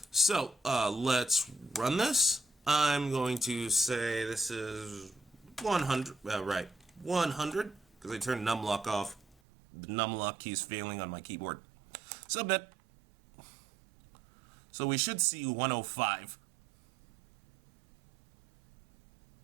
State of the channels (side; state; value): left; drops out; at 9.3 s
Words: So let's run this. I'm going to say this is 100, right, 100, because I turned numlock off. The numlock key is failing on my keyboard. Submit. So we should see 105.